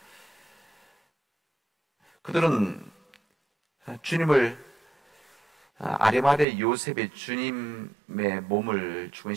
그들은 주님을, 아리마대 요셉의 주님의 몸을 죽은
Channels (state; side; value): drops out; left; at 6.5 s